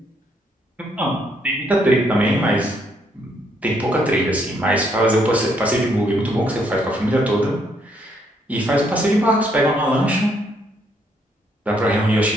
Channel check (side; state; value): both; normal; correlation 0.71